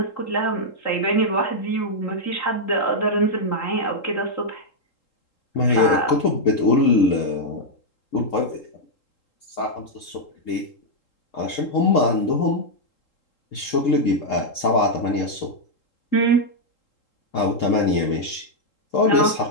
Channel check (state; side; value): late; right; 3.8 ms